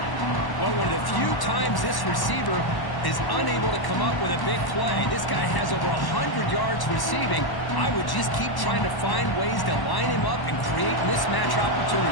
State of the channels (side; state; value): right; late; 1.1 ms